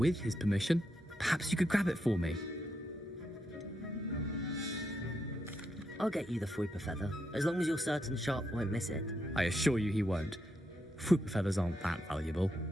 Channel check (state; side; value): normal; both; correlation 0.81